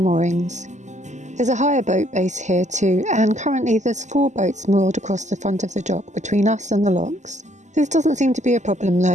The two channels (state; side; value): late; left; 0.34 ms